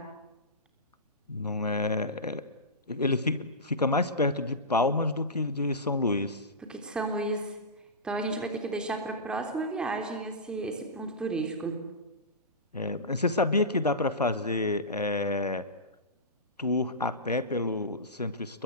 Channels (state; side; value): normal; both; correlation -0.18